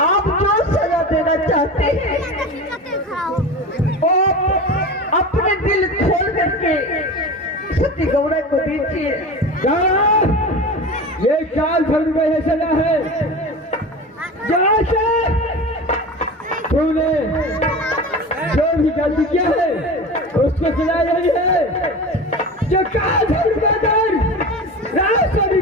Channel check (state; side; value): normal; both; correlation 0.30